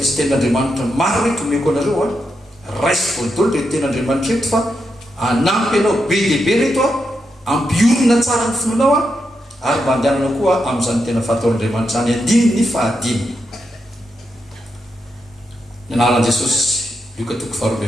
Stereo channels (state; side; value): normal; both; correlation 0.84